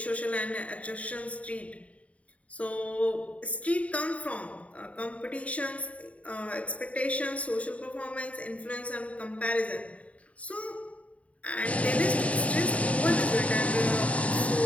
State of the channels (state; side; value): late; right; 0.066 ms